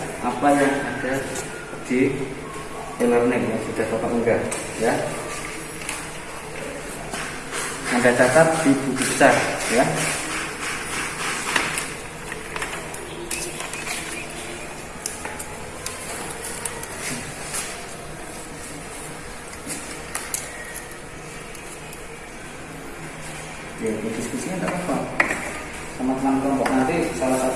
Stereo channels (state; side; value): identical; both; correlation 1.00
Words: apa yang ada di e-learning yang sudah Bapak unggah, ya. Anda catat di buku besar, ya. Ya, diskusinya tidak apa-apa. Teman-teman kelompok nanti salah